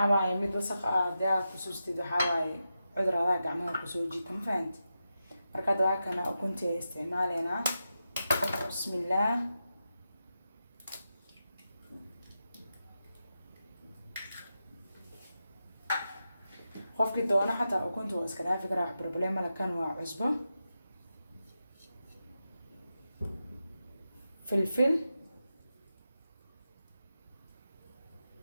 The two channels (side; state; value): both; inverted; correlation -0.89